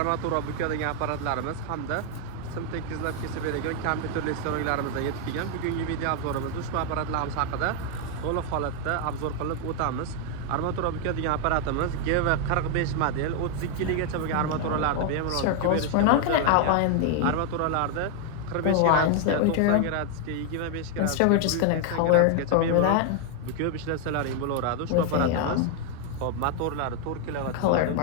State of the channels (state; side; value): different; both; correlation 0.00